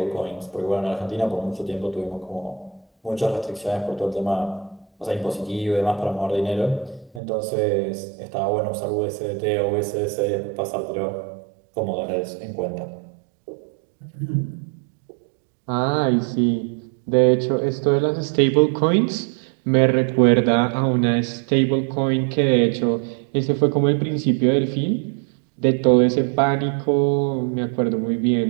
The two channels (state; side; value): drops out; left; at 7.2 s